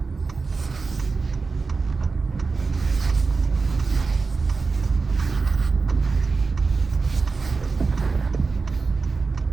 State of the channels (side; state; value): left; quieter; 4.3 dB